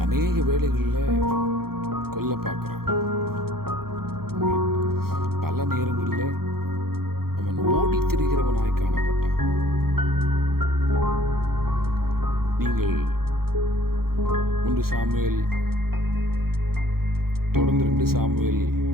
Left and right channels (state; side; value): late; left; 0.94 ms